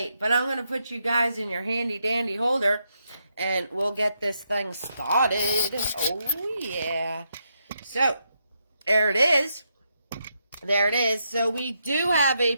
but I'm going to put you guys in your handy dandy holder and we'll get this thing started. Oh, yeah. So, there it is. There it is. So, we do have a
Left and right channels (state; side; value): inverted; both; correlation -0.81